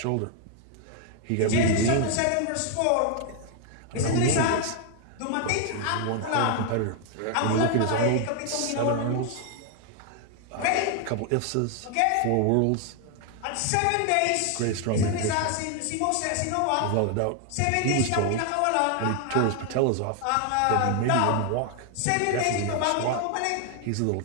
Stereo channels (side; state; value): both; different; correlation 0.00